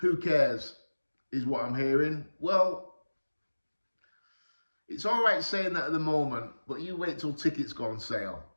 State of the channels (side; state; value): both; inverted; correlation -1.00